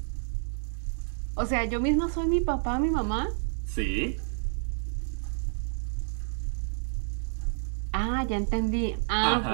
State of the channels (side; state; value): left; silent; 58 dB below the other